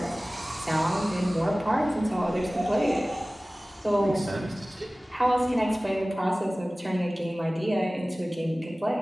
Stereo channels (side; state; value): both; normal; correlation 0.98